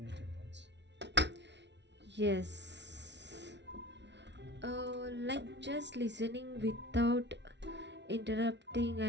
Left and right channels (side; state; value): left; late; 0.51 ms